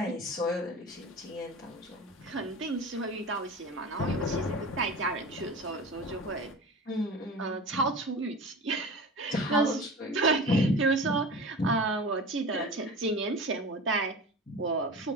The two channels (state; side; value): normal; both; correlation 0.33